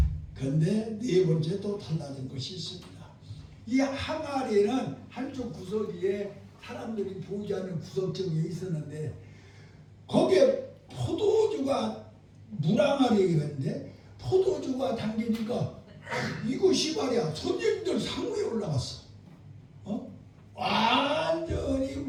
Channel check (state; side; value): identical; both; correlation 1.00